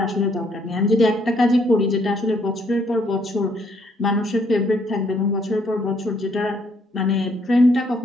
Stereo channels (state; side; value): normal; both; correlation 0.69